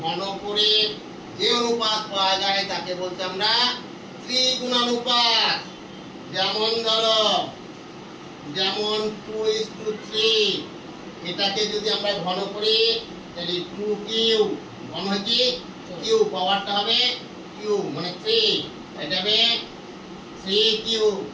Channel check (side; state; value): both; identical; correlation 1.00